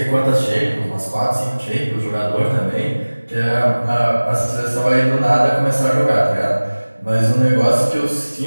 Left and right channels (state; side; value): inverted; both; correlation -1.00